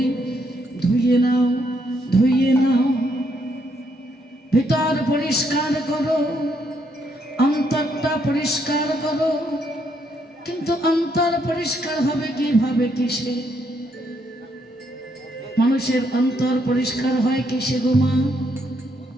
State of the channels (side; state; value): both; normal; correlation 0.74